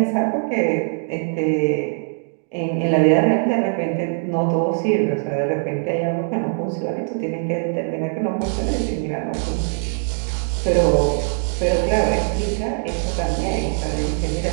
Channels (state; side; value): silent; left; digital silence